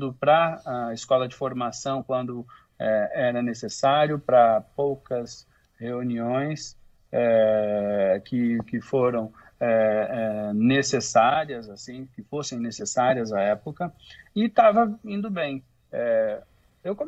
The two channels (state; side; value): identical; both; correlation 1.00